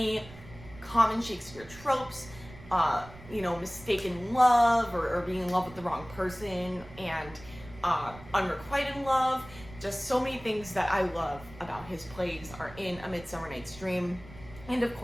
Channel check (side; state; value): right; noise; rumble, 18 dB below the sound